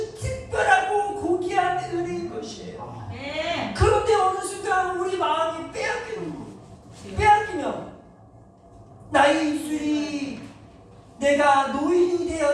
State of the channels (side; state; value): both; identical; correlation 1.00